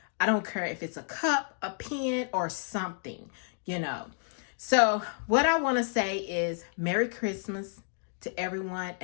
don't care if it's a cup, a pen, or something, So what I want to say is Merry Christmas to everyone,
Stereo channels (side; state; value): right; silent; digital silence